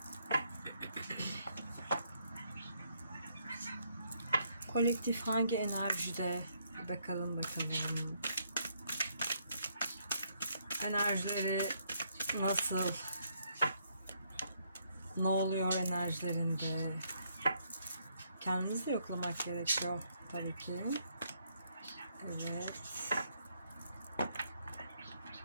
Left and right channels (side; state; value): both; inverted; correlation -0.72